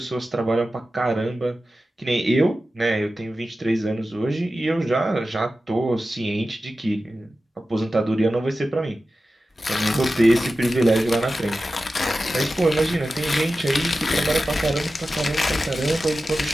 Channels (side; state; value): both; normal; correlation 0.93